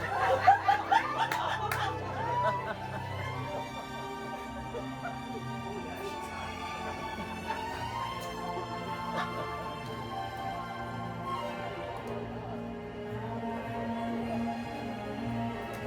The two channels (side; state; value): both; identical; correlation 1.00